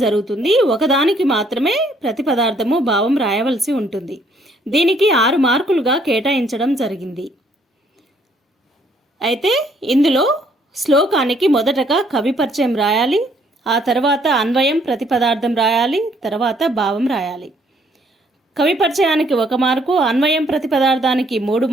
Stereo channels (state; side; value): normal; both; correlation 0.66